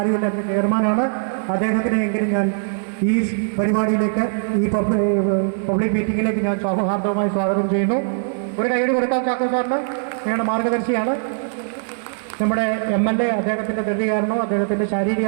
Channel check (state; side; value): silent; left; digital silence